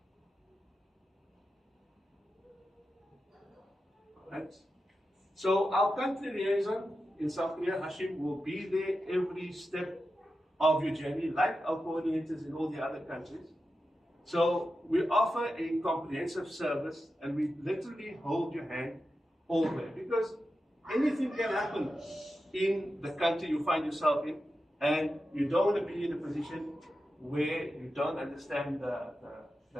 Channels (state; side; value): normal; both; correlation 0.90